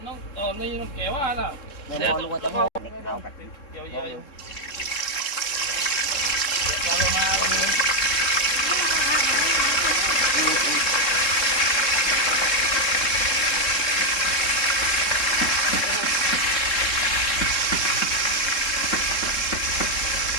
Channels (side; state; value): right; late; 3.7 ms